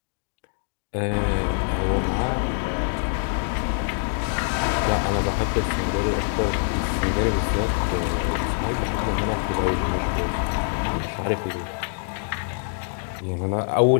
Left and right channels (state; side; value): silent; right; digital silence